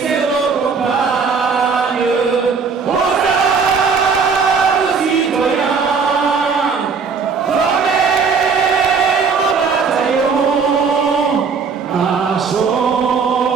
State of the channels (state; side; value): quieter; left; 5.5 dB